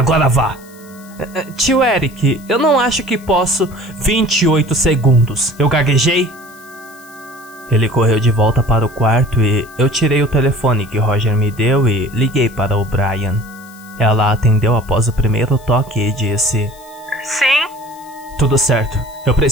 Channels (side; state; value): left; noise; hiss, 24 dB below the sound